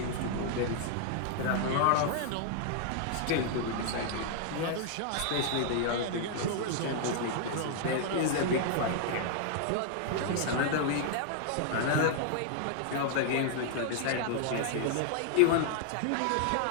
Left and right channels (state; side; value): different; both; correlation -0.01